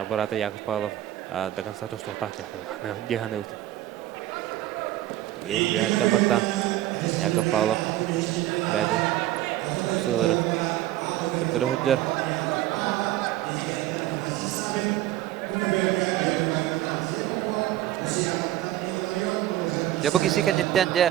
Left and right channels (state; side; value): quieter; left; 14.2 dB